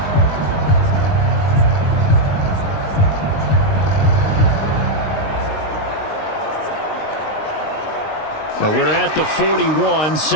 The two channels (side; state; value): right; late; 19 ms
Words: Now we're at the 41,